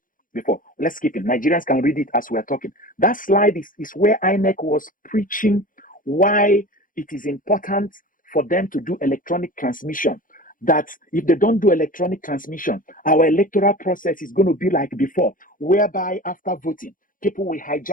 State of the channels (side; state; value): right; late; 0.40 ms